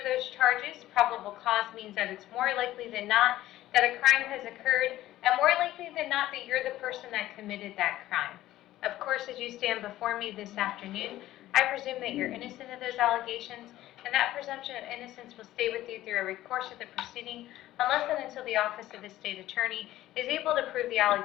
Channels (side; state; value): right; quieter; 14.8 dB